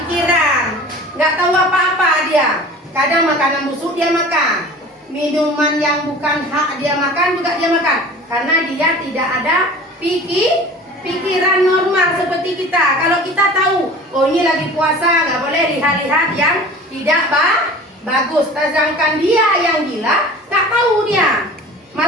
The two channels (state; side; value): normal; both; correlation 0.41